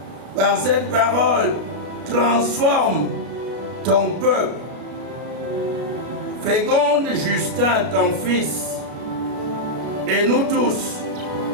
Par cette parole, transforme ton peuple. Féconde Justin, ton fils, et nous tous,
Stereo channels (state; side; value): late; left; 33 ms